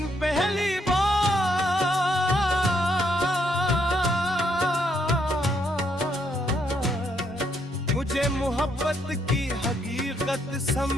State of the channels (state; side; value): normal; both; correlation 0.74